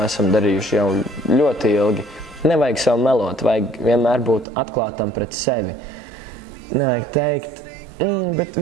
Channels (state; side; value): drops out; left; at 4.5 s